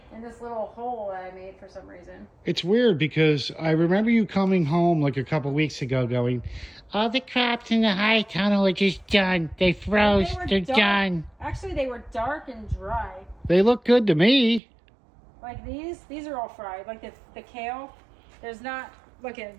In this little hole that I made for some reason. It's weird because I remember you coming home like a couple weeks ago going, all the crops in the high tunnel are just done. They froze. They're done. Actually, they were dark and dry. They look good to me. Like these are all fried. Like the kale, there's not, look at it,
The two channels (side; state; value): left; drops out; at 14.6 s